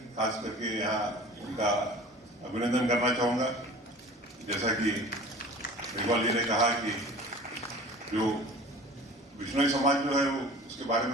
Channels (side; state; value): both; normal; correlation 0.42